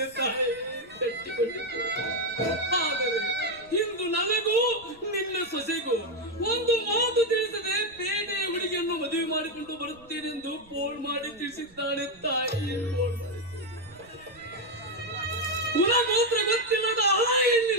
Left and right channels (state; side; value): noise; right; rumble, 26 dB below the sound